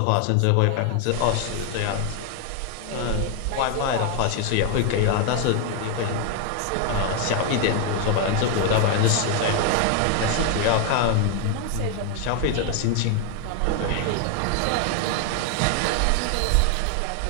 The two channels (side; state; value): both; different; correlation 0.01